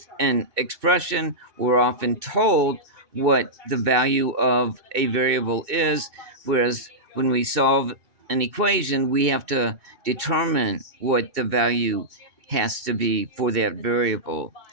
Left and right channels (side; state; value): left; late; 2.7 ms